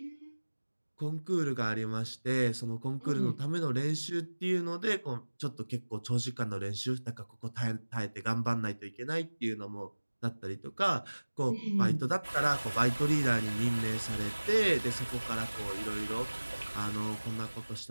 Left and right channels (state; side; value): inverted; both; correlation -1.00